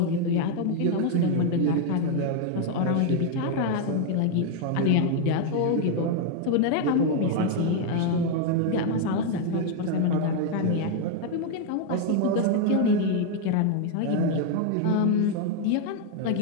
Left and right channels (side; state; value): both; different; correlation 0.00